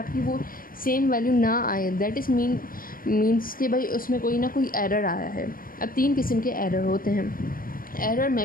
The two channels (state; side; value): late; right; 0.41 ms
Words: वो सेम वैल्यू ना आए, दैट इज़ मीन्स कि भाई उसमें कोई ना कोई एरर आया है। अब 3 किस्म के एरर होते हैं। एरर